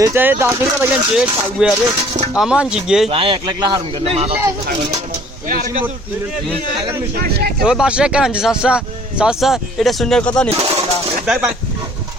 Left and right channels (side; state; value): both; normal; correlation 0.56